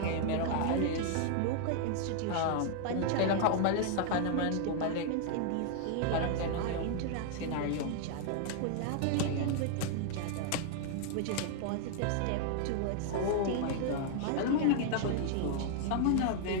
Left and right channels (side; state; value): both; different; correlation 0.00